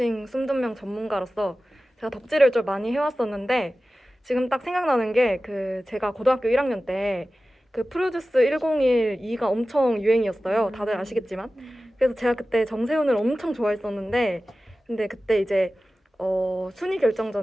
숨둔명 전문가로서 제가 덕질을 좀 많이 해왔었는데 지금 딱 생각나는 게 제가 고등학교 1학년 때 그 프로듀스 101-2가 엄청 유행이었어요. 다들 아시겠지만. 그래서 제가 그때 정세훈을 엄청 좋아했었는데 근데 그때 이제 순위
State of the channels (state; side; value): normal; both; correlation 0.95